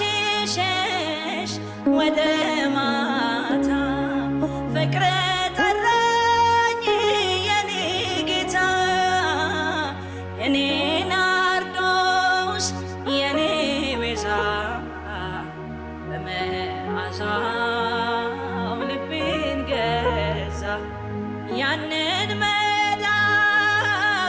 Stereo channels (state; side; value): identical; both; correlation 1.00